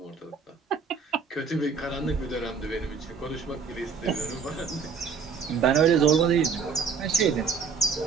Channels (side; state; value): left; quieter; 5.8 dB